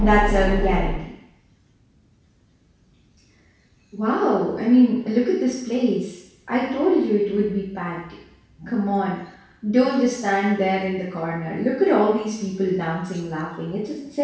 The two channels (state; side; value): identical; both; correlation 1.00